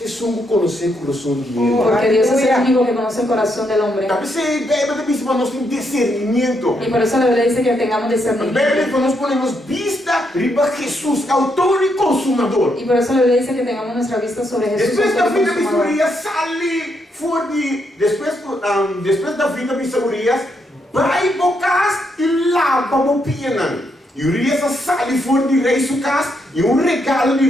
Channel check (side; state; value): both; normal; correlation 0.78